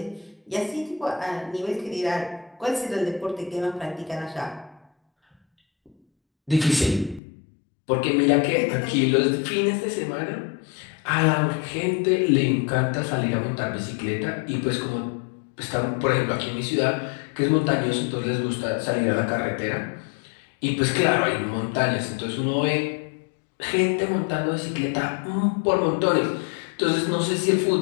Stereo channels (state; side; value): drops out; right; at 7.2 s